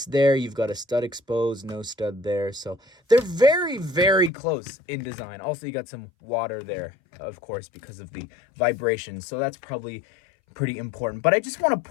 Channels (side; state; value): right; drops out; at 4.3 s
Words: there, you've got a stud exposed, no stud there. So they're very, very close in design. Also, you got some water there, of course, because of the vibrations. So that's probably pretty important. But I just want to